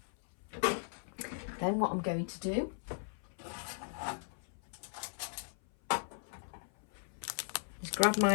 Then what I'm going to do is grab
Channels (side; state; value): right; silent; 53 dB below the other